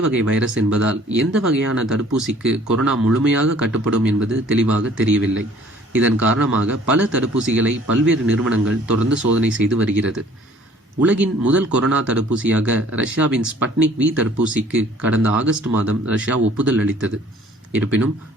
வகை வைரஸ் என்பதால் எந்த வகையான தடுப்பூசிக்கு கொரோனா முழுமையாக கட்டுப்படும் என்பது தெளிவாக தெரியவில்லை. இதன் காரணமாக பல தடுப்பூசிகளை பல்வேறு நிறுவனங்கள் தொடர்ந்து சோதனை செய்து வருகிறது. உலகின் முதல் கொரோனா தடுப்பூசியாக ரஷ்யாவின் ஸ்பட்னிக் வி தடுப்பூசிக்கு கடந்த ஆகஸ்ட் மாதம் ரஷ்யா ஒப்புதல் அளித்தது. இருப்பினும்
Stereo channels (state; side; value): normal; both; correlation 0.55